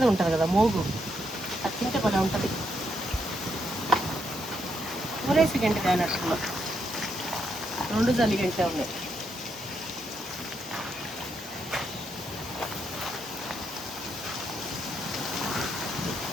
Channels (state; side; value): normal; both; correlation 0.79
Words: ఉంటుంది కదా మోగు, అది తింటే కూడా ఉంటుంది. ఊరేసి గంట కానట్టులో 2 జల్లి గంటే ఉన్నాయి.